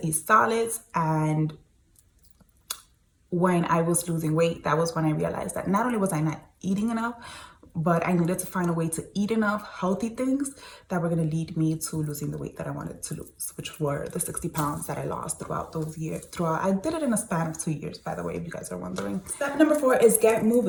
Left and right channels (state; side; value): identical; both; correlation 1.00